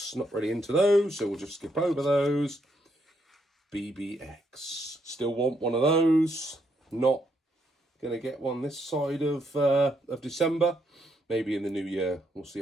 Not really into those, so we'll just skip over those. BBX. Still want one of those. Not going to get one this side of December. Maybe in the new year. We'll see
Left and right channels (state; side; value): normal; both; correlation 0.75